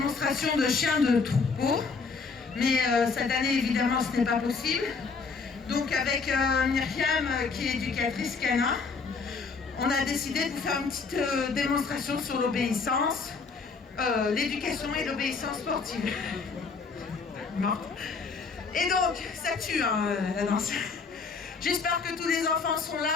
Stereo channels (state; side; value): quieter; right; 4.8 dB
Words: de chiens de troupeau. Mais cette année, évidemment, ce n'est pas possible. Donc avec Myriam, qui est éducatrice canin, on a décidé de vous faire une petite démonstration sur l'obéissance, l'éducation et l'obéissance sportive. Et donc, ça tue la danse. J'espère que tous les enfants sont